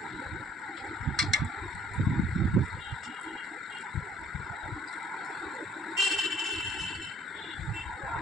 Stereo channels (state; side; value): normal; both; correlation 0.59